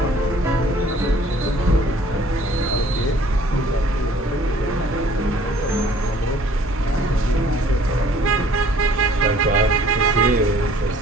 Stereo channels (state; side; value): normal; both; correlation 0.56